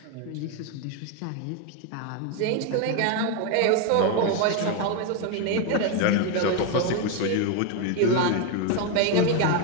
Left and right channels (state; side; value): different; both; correlation 0.02